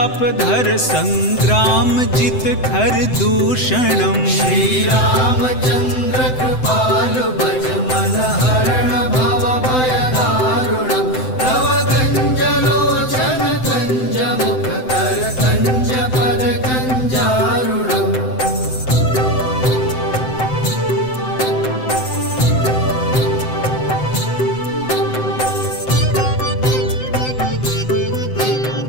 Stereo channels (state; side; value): late; right; 7.8 ms